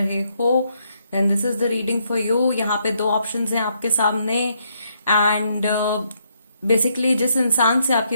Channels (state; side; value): inverted; both; correlation -0.74